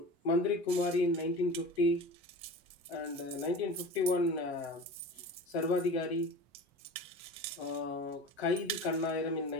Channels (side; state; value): both; normal; correlation 0.35